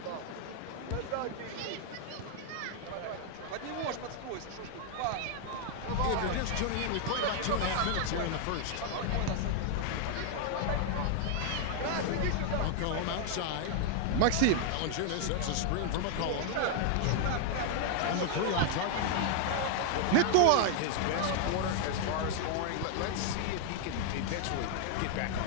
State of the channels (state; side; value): different; both; correlation 0.00